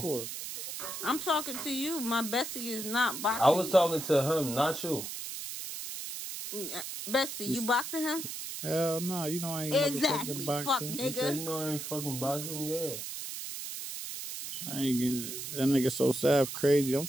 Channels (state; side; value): noise; right; hiss, 7 dB below the sound